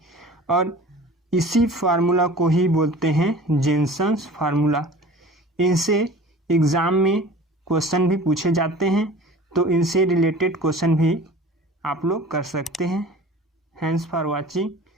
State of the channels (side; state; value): both; normal; correlation 0.42